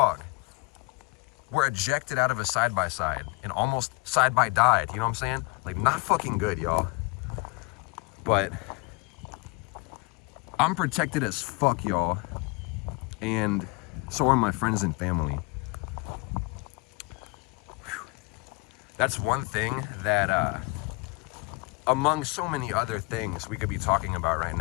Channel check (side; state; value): right; quieter; 25.5 dB